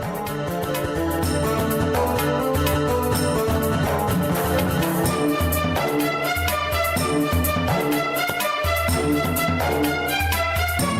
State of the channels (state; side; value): identical; both; correlation 1.00